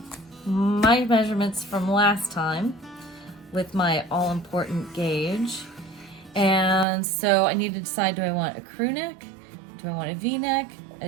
my measurements from last time with my all-important gauge. And so I need to decide, do I want a crew neck? Do I want a V-neck,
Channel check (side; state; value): left; drops out; at 6.9 s